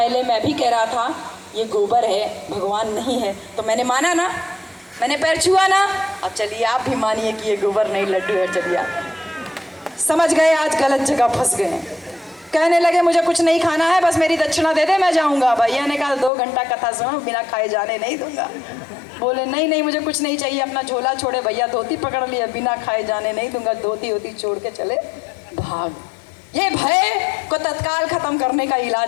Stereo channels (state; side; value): drops out; right; at 16.3 s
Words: मैं भी कह रहा था ये गोबर है, भगवान नहीं है, तो मैंने माना ना, मैंने पैर छुआ ना। अब चलिए आप भी मानिए कि ये गोबर नहीं लड्डू है। चलिए आप समझ गए, आज गलत जगह फंस गए। कहने लगे मुझे कुछ नहीं खाना है, बस मेरी दक्षिणा दे दे, मैं जाऊंगा। भैया ने कहा 2 घंटा कथा सुनो, बिना खाए जाने नहीं दूंगा। बोले नहीं नहीं मुझे कुछ नहीं चाहिए। अपना झोला छोड़े, भैया धोती पकड़ लिया, बिना खाए जाने नहीं दूंगा। धोती होती छोड़ के चले भाग। ये भय को तत्काल खत्म करने का